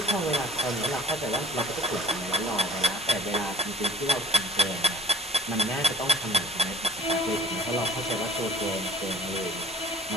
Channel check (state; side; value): normal; both; correlation 0.49